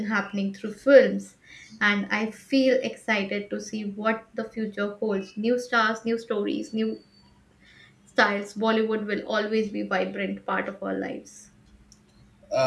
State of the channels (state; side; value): identical; both; correlation 1.00